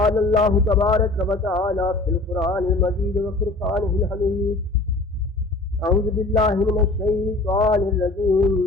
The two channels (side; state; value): right; quieter; 3.1 dB